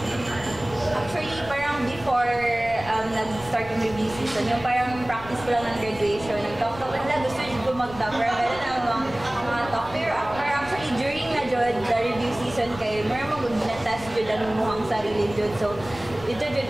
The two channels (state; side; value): noise; left; rumble, 15 dB below the sound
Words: Actually, parang before nag-start yung review season, yung parang practice ko lang ng graduation, nag-talk nila, gusto nyo ko mag-top, pero meron ang mga talk. Pero actually, during na jud, the review season kayo, meron mo na-test jud ang muhang sarili jud. So, ito